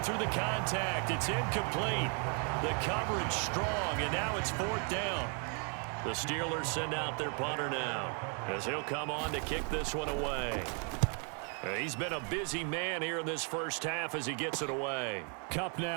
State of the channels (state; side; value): quieter; left; 39.6 dB